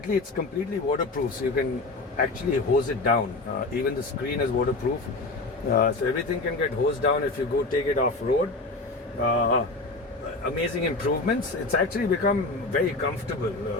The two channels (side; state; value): right; quieter; 3.2 dB